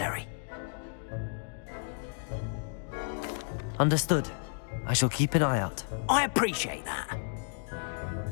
Understood. I shall keep an eye out. I appreciate that.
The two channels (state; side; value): silent; right; digital silence